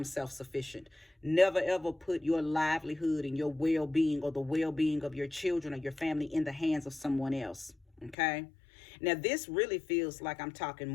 self-sufficient. Never ever put your livelihood and your well-being or the well-being of your children or your family in the hands of someone else. Okay. Now, this really feels like I'm talking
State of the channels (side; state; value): right; drops out; at 8.2 s